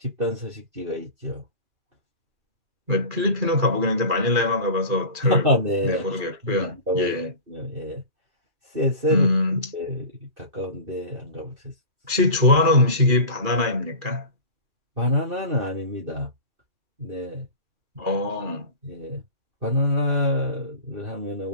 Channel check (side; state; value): left; late; 2.4 ms